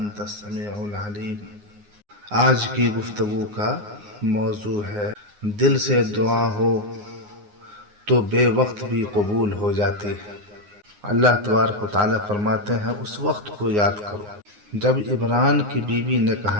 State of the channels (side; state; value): left; late; 9.6 ms